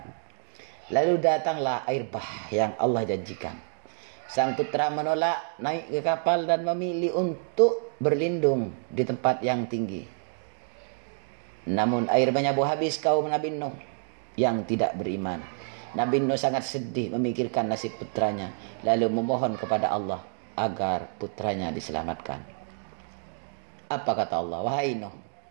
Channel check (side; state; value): left; silent; 58 dB below the other